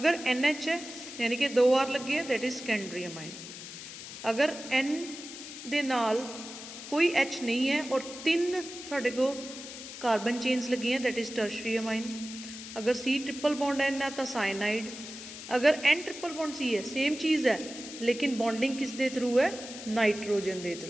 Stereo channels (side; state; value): left; noise; hiss, 12 dB below the sound